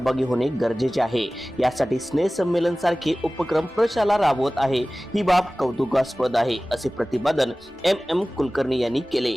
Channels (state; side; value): normal; both; correlation 0.98